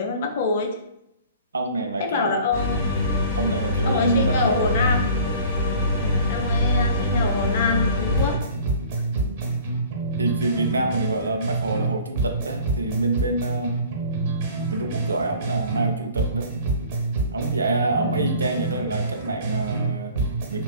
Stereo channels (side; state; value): both; inverted; correlation -0.48